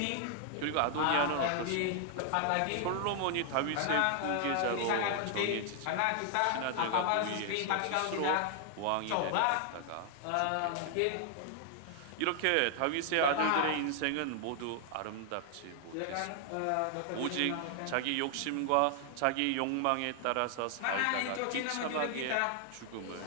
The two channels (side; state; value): both; different; correlation 0.00